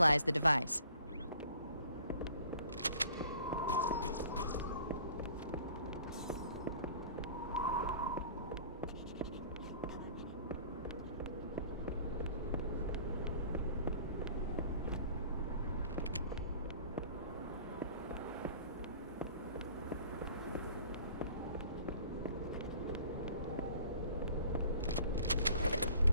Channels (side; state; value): both; inverted; correlation -0.51